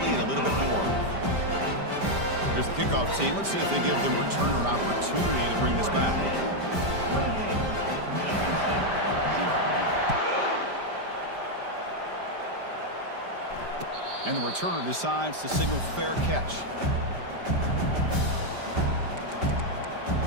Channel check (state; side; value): late; left; 5.1 ms